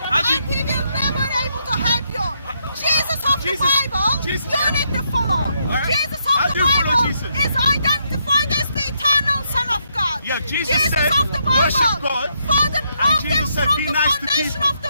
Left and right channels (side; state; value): both; inverted; correlation -0.77